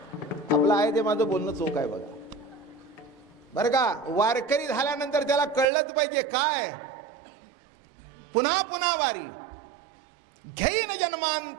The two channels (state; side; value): drops out; left; at 5.7 s